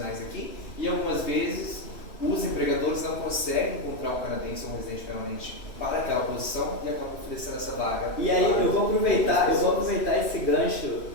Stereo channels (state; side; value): late; right; 3.1 ms